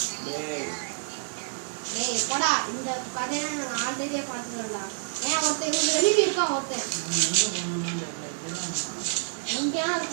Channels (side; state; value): left; silent; digital silence